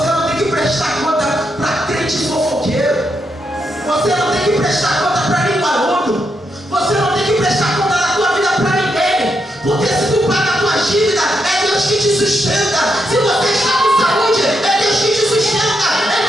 não tem que prestar conta para crente fofoqueiro. Você não tem que prestar conta para linguarudo. Você não tem que prestar conta da tua vida para ninguém. Porque se tu paga a tua dívida, é Deus que te sustenta. Se você está com saúde, é Deus que te sustenta.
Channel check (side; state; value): both; normal; correlation 0.81